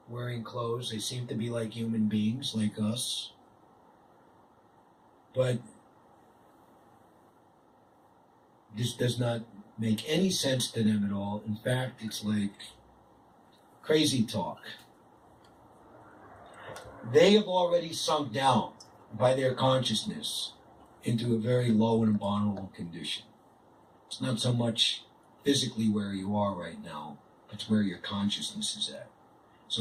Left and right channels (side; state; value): both; identical; correlation 1.00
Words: wearing clothes. They seem to be like human beings, like us. But this does not make any sense to them at all. In fact, it's like crazy talk. they have already sunk down by their consciousness into a very low and abominable condition. It's not so much physically where you are right now, but it's where your consciousness is at.